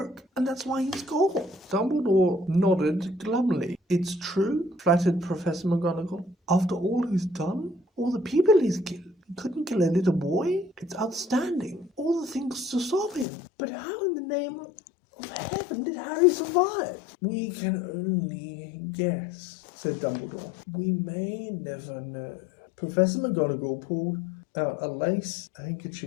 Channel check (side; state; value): right; drops out; at 13.2 s